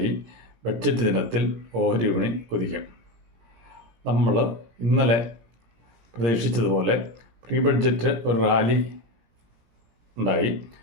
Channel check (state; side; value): late; left; 17 ms